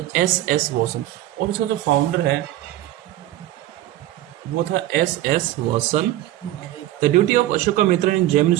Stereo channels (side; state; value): left; quieter; 14.6 dB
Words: S.S. वॉसन, और उसका जो फाउंडर है वो था S.S. Vasan. The duty of Ashoka Mitra in Gemini